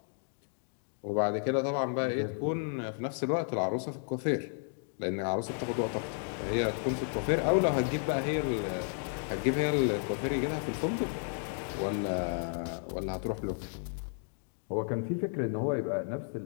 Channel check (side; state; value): right; silent; 56 dB below the other